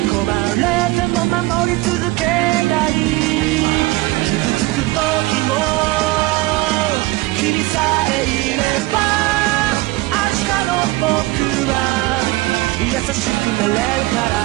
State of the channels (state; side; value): quieter; left; 20.3 dB